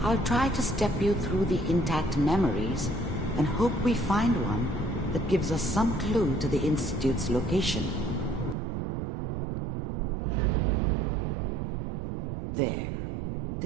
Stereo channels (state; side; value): drops out; left; at 8.6 s